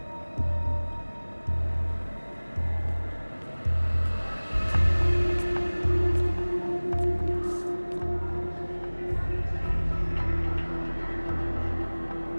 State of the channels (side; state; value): both; inverted; correlation -1.00